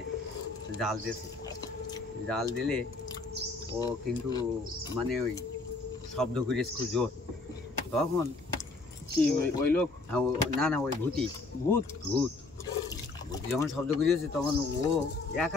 জাল দিয়েছে। জাল দিলে ও কিন্তু মানে ওই শব্দ করেছে খুব জোর। তখন কি ওই লোক? না না, ওই ভূতি, ভূত ভূত ভূতি যখন শব্দ করেছে তখন ও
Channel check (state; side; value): quieter; right; 3.5 dB